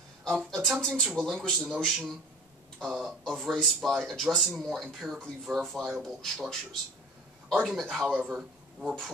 Attempting to relinquish the notion of race by addressing more empirically verifiable structures. Argument, however, were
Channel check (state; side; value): normal; both; correlation 0.42